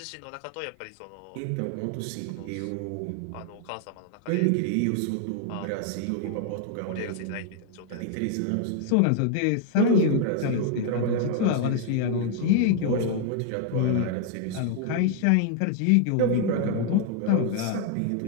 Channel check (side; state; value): both; different; correlation 0.00